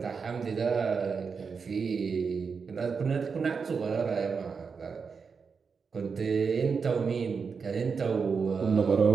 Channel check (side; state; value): left; quieter; 5.5 dB